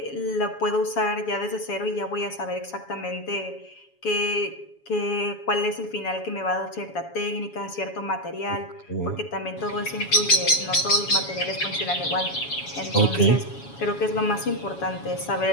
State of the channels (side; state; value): right; late; 7.2 ms